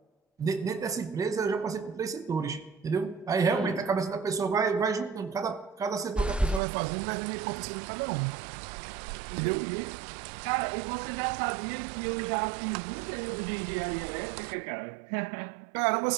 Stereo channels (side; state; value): left; drops out; at 6.6 s